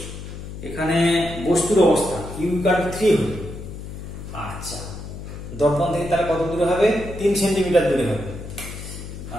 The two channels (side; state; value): left; noise; hum, 10 dB below the sound